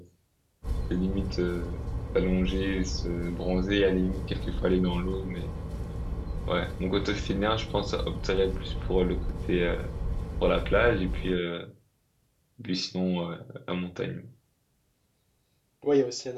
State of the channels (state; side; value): identical; both; correlation 1.00